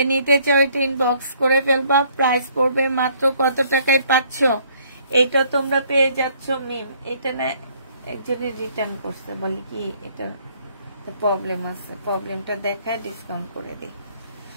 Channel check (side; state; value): both; inverted; correlation -0.63